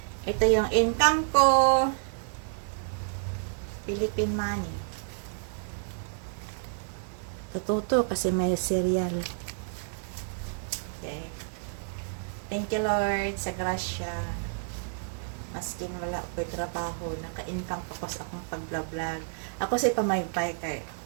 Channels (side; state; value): left; silent; 55 dB below the other